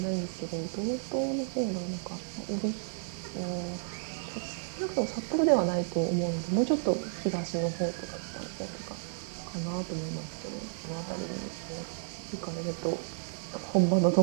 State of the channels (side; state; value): left; silent; 56 dB below the other